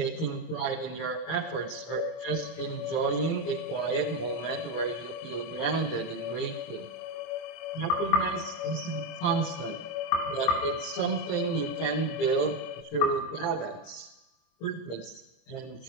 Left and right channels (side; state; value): right; late; 25 ms